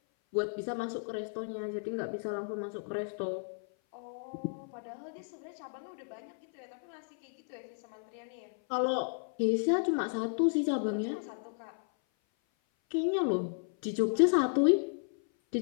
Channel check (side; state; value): right; silent; 55 dB below the other